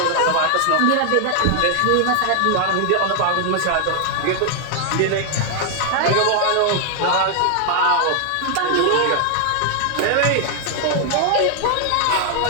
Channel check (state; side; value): different; both; correlation 0.00